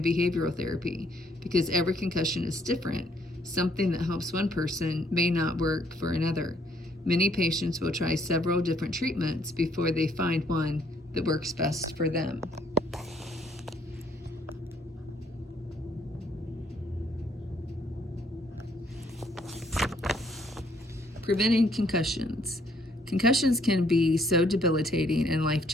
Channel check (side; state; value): both; normal; correlation 0.67